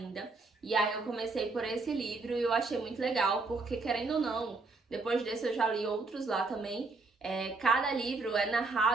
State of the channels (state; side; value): quieter; left; 3.7 dB